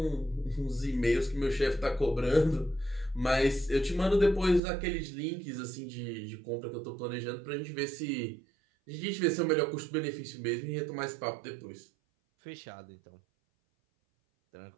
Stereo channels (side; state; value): left; drops out; at 4.6 s